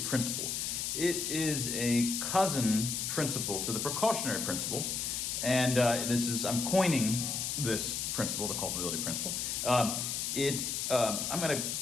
It is a cousin principle to the precautionary principle, and I'm coining this principle, the culpability principle. I'm going to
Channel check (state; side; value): noise; left; hiss, 1 dB below the sound